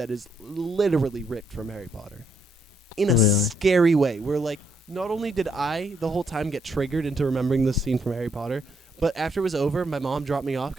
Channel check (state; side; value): normal; both; correlation 0.74